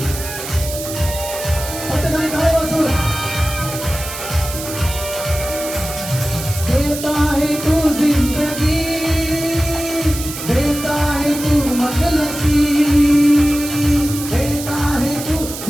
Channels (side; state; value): right; noise; hiss, 9 dB below the sound